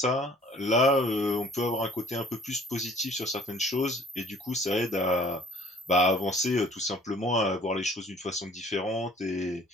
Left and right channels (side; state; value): both; normal; correlation 0.53